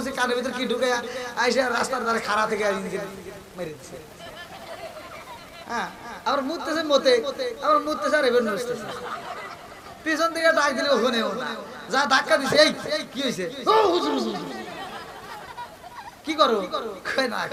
কানের ভিতরে কি ঢুকে আইসে রাস্তার ধারে খাড়া থেকে মেরে দিচ্ছে হ্যাঁ আবার মুততেছে মতে আবার মুততেছে আর এবার নুসতেছে পিছন থেকে ডাক দিলে ওখানেও না যা ধাক্কা দিছে এই কি হয়েছে ও হুজুর কি করো কই না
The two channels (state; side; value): identical; both; correlation 1.00